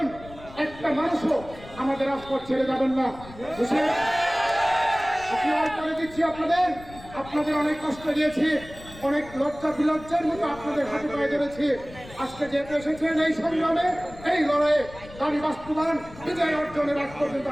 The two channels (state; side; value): noise; left; rumble, 18 dB below the sound